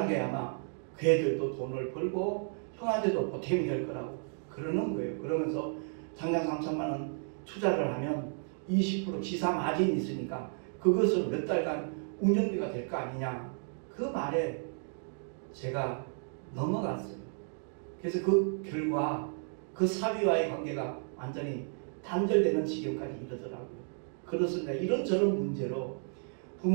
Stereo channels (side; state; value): left; silent; 56 dB below the other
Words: 아마 그 애들도 돈을 벌고 형한테도 보탬이 될 거라고 그러는 거예요. 그러면서 당장 3천만 원 투자를 하면 20% 지사 마진이 있으니까 그것을 몇 달간 운영비가 될 거 아니냐. 그 말에 제가 넘어갔어요. 그래서 그 결과 그 사위와의 관계가 완전히 단절되는 지경까지 이르더라고요. 그렇습니다. 이런저런 문제로